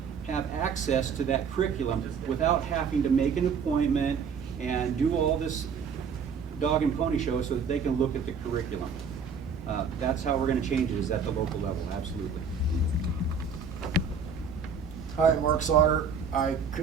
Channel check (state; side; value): quieter; left; 5.9 dB